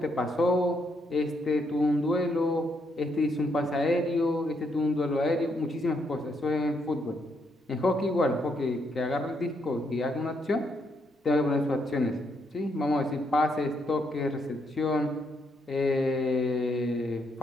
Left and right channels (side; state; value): both; normal; correlation 0.76